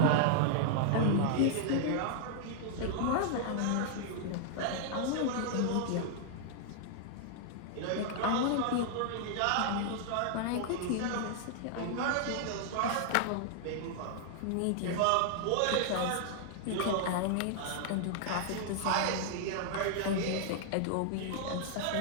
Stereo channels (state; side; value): different; both; correlation -0.01